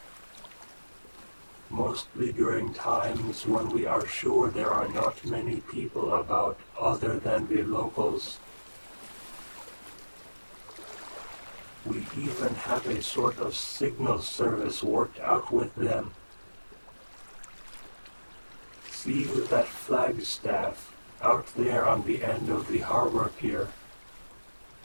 Mostly during times when we are sure there are not many people about other than the locals. We even have a sort of signal service worked out with them. See that flagstaff out there on the end of the harbor pier?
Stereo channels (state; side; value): inverted; both; correlation -1.00